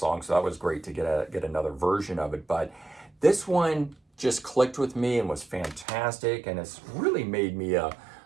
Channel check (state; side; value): drops out; left; at 5.9 s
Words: So that was great to get another version of it. But this one just clicked with me and was fantastic, and it's really made me a